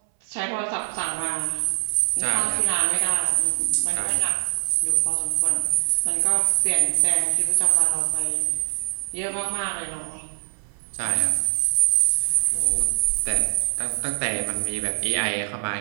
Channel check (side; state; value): left; silent; 63 dB below the other